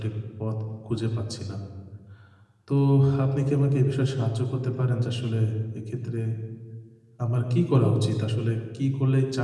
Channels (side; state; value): both; identical; correlation 1.00